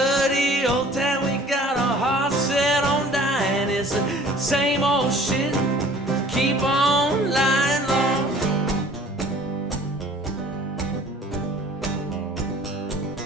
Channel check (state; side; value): normal; both; correlation 0.50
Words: old town, we got our hearts set on dying. It's the same old shit, keep on lying low.